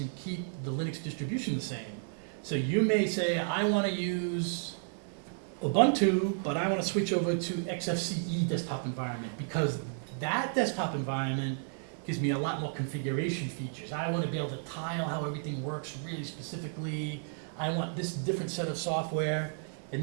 and keep the Linux distribution the same. So you may say, I want to use Ubuntu, but I want to switch over to XFCE desktop environment because that desktop environment gives me a lot more configuration features. I want to be able to tile how everything works really specifically. I want this different set of software,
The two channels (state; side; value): silent; left; 56 dB below the other